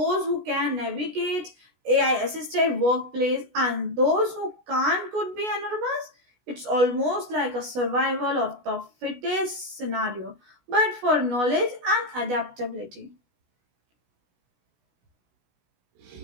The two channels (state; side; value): late; left; 16 ms